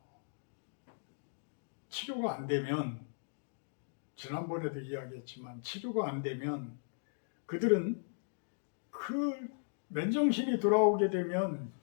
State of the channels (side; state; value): right; silent; digital silence